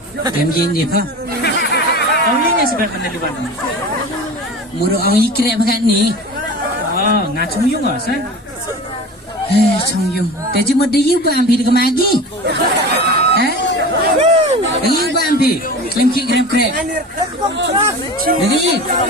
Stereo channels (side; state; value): both; normal; correlation 0.34